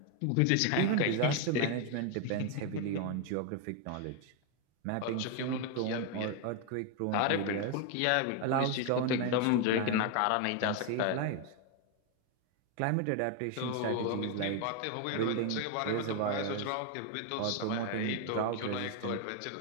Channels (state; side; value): different; both; correlation 0.01